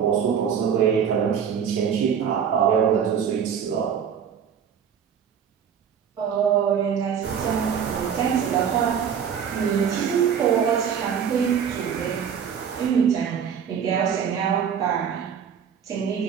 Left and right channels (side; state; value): left; quieter; 7.7 dB